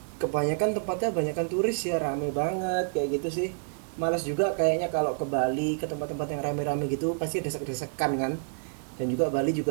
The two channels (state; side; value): silent; left; digital silence